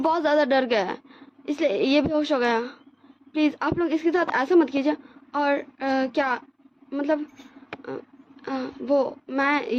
ज़्यादा डर गया है इसलिए ये बेहोश हो गया। प्लीज़ आप लोग इसके साथ ऐसा मत कीजिए। और क्या मतलब वो मैं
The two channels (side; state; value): both; identical; correlation 1.00